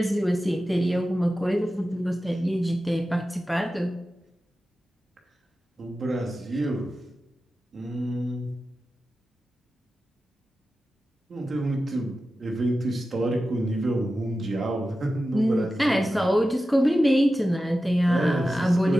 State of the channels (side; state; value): both; normal; correlation 0.93